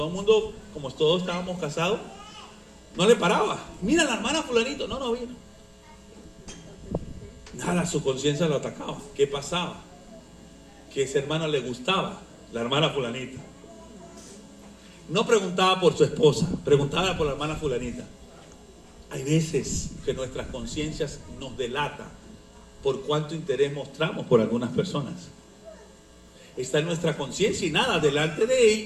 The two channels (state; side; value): identical; both; correlation 1.00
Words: el mundo, como todos estábamos casados, no le paraba. Mira, la hermana fulanito, no vino. Nada, su conciencia lo atacaba. ¿Qué pasaba? Que ese hermano le gustaba, la hermana fulanita. No preguntaba por su esposa, preguntaba por la hermana fulanita. Hay veces que nuestras conciencias nos delatan por cuánto interés mostramos por algunas personas. Está en nuestra conciencia y nada, delante